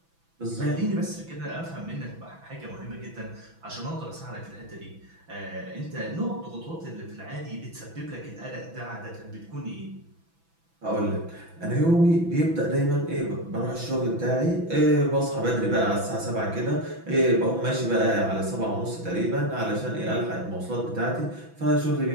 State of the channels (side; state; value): left; late; 6.0 ms